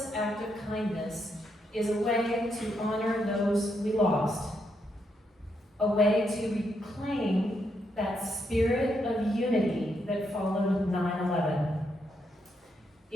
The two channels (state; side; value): normal; both; correlation 0.79